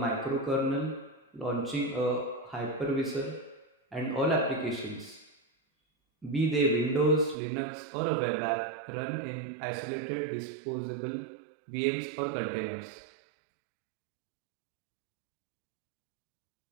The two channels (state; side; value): drops out; left; at 7.4 s